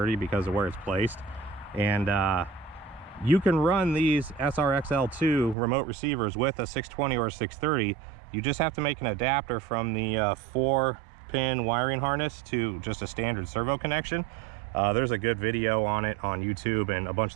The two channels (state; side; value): drops out; left; at 5.6 s